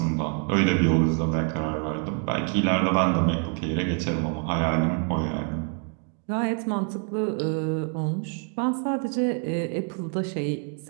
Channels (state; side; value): quieter; left; 39.2 dB